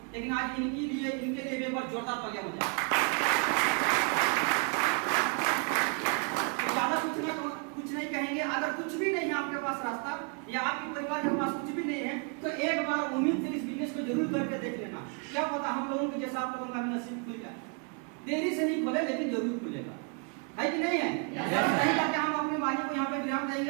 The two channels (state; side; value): quieter; left; 36.8 dB